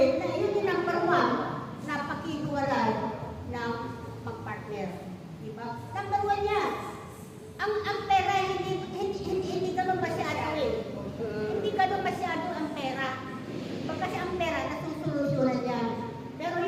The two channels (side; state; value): both; identical; correlation 1.00